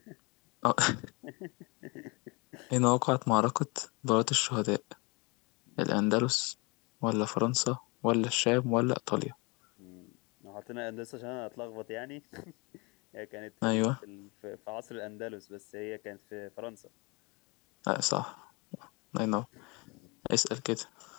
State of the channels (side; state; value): right; quieter; 28.5 dB